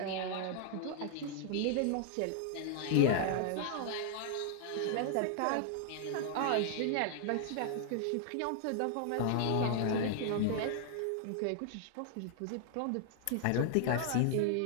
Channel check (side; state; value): both; different; correlation 0.00